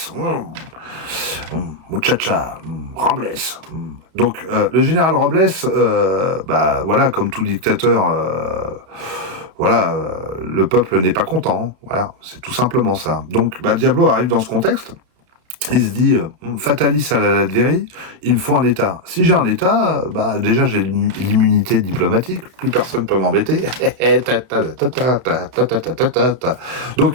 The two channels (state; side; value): late; left; 32 ms